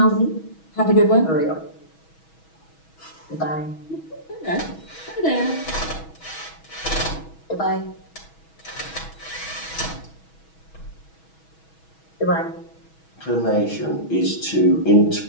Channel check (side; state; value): right; late; 6.2 ms